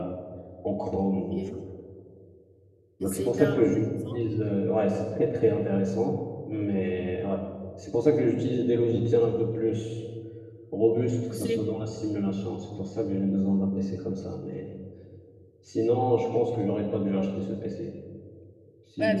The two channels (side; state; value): both; identical; correlation 1.00